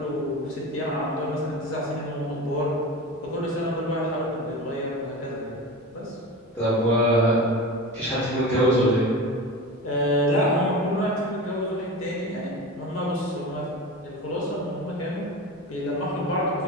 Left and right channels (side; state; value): both; normal; correlation 0.29